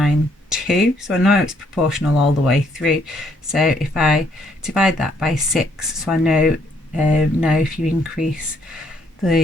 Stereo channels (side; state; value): both; normal; correlation 0.69